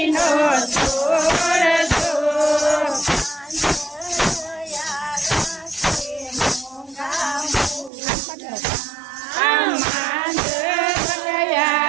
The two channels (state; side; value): drops out; left; at 7.9 s